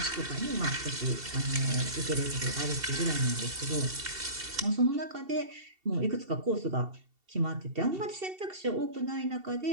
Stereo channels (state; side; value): late; left; 2.7 ms